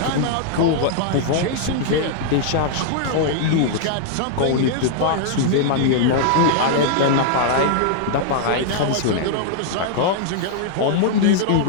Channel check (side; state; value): both; different; correlation -0.01